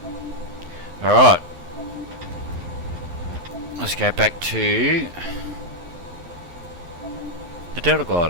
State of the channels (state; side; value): late; left; 11 ms